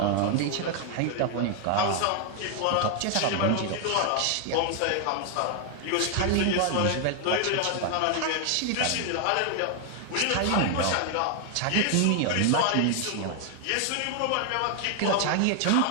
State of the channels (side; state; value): both; different; correlation 0.00